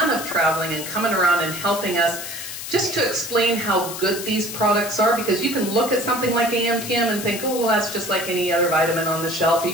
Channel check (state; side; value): noise; left; hiss, 8 dB below the sound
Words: of traveling and coming around and helping us just to explain how good these products are, because you can look at something like AMPM and think, oh, well, that's just like any other vitamin on the shelf. You